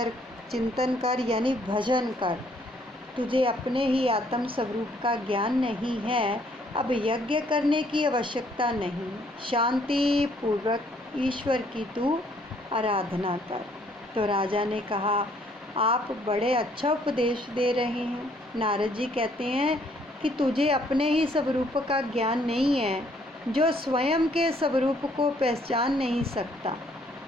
चिंतन कर, यानी भजन कर। तुझे अपने ही आत्म स्वरूप का ज्ञान नहीं है, अब यज्ञ करने की आवश्यकता नहीं। शांति पूर्वक ईश्वर की तू आराधना कर। तो राजा ने कहा, आप बड़े अच्छा उपदेश दे रहे हैं। नारद जी कहते हैं कि तुझे अपने ही स्वरूप का ज्ञान नहीं है। जो स्वयं के स्वरूप को पहचान नहीं सकता,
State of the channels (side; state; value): both; normal; correlation 0.65